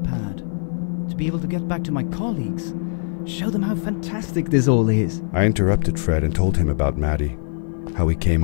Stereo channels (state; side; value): silent; right; 57 dB below the other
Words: pad to be able to get back to my colleagues, show them how fantastic this all is. I interrupted Fred and told him about Maddie, how we came